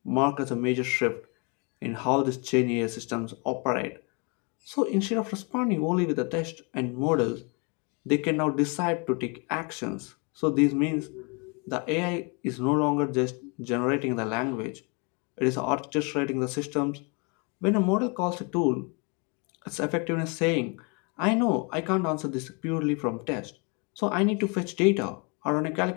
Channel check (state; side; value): quieter; right; 32.2 dB